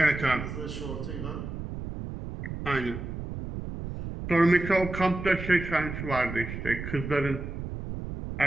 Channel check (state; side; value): noise; right; rumble, 7 dB below the sound